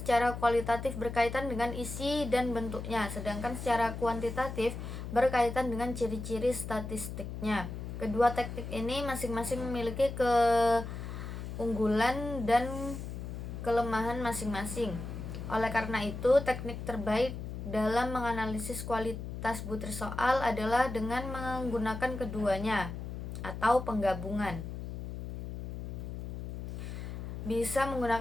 secara kualitatif berkaitan dengan isi dan bentuknya, sedangkan secara kuantitatif berkaitan dengan ciri-ciri statistiknya. Kedua teknik ini masing-masing memiliki keunggulan dan kelemahan masing-masing. Oleh karena itu, teknik terbaik dalam menganalisis kualitas butir soal adalah dengan menggunakan keduanya atau penggabungan. Bisa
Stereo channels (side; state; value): left; noise; hum, 7 dB below the sound